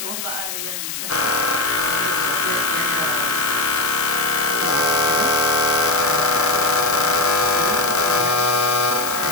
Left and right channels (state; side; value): noise; left; hiss, 6 dB below the sound